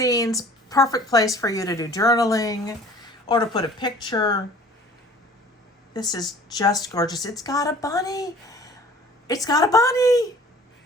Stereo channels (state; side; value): normal; both; correlation 0.49